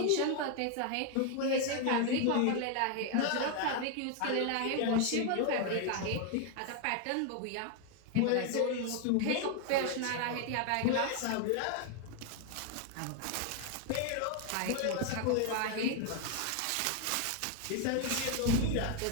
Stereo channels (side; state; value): both; different; correlation 0.01